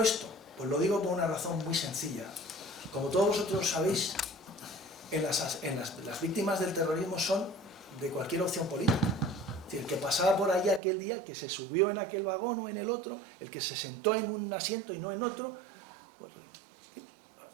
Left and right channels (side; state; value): left; drops out; at 10.8 s